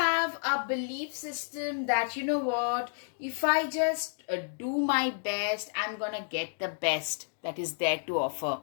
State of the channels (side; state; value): right; silent; digital silence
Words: a belief system that, you know what, if I just do my best, I'm gonna get the best that is there to offer.